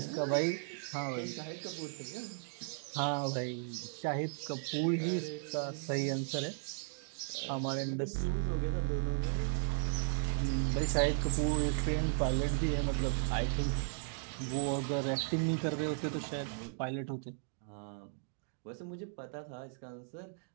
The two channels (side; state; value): left; silent; digital silence